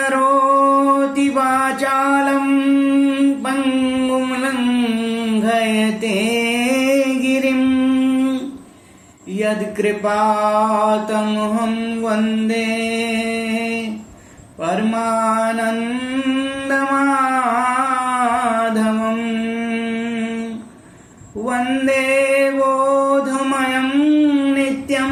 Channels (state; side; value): identical; both; correlation 1.00